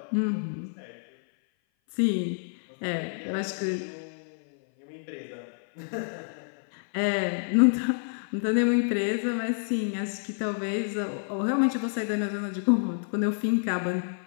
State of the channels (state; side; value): silent; right; 57 dB below the other